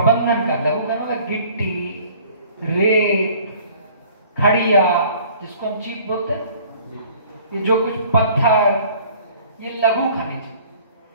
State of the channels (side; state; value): both; inverted; correlation -0.52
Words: का, लघु खनिज मतलब गिट्टी, रेत, खड़िया जिसको हम चीप बोलते हैं, ये जो कुछ पत्थर, ये लघु खनिज,